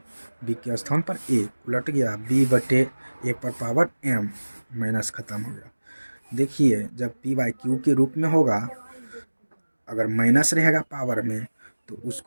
b के स्थान पर a, उलट गया b बटे a पर पावर m, माइनस खत्म हो गया। देखिए जब p बाई q के रूप में होगा, अगर माइनस रहेगा पावर में तो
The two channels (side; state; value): both; inverted; correlation -1.00